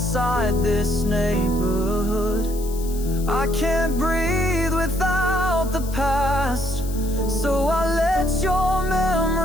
this neighborhood. I can't breathe without the past, so I let your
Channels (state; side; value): noise; left; hiss, 16 dB below the sound